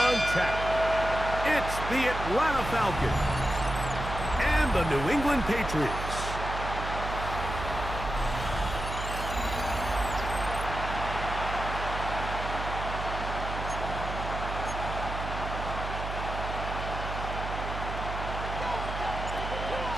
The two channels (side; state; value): right; noise; hum, 5 dB below the sound